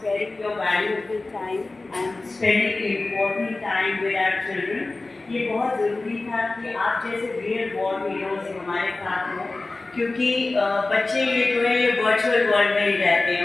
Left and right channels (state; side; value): quieter; right; 3.3 dB